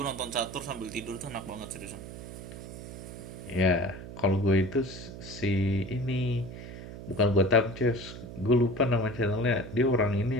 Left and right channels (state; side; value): noise; right; hum, 12 dB below the sound